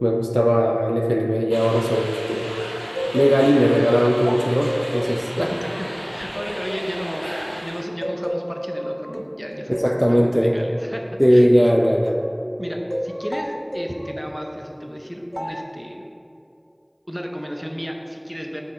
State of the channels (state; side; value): identical; both; correlation 1.00